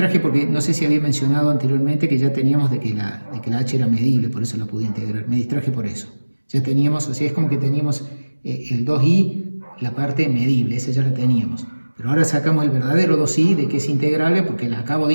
porque no sé si había mencionado anteriormente que ya teníamos de que la h era medible, por eso la pude integrar. Me distraje por eso. Ya teníamos, o sea, es como que teníamos el 2i, la parte medible, esa ya la teníamos. Pero ahora sacamos el verdadero 2i de que es integrable porque la acabo de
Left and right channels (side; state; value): both; inverted; correlation -1.00